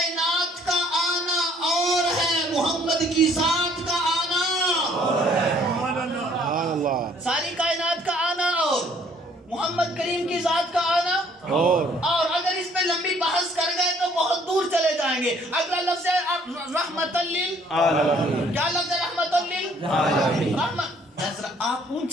का आना और है, मोहम्मद की जात का आना और है। सारी कायनात का आना और मोहम्मद करीम की जात का आना और अगर इस पे लंबी बहस कर गए तो बहुत दूर चले जाएंगे। अगला लफ्ज़ है रहमतल लिल आलमीन। क्या लफ्ज़ है? रहमतल लिल आलमीन। आप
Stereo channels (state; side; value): normal; both; correlation 0.61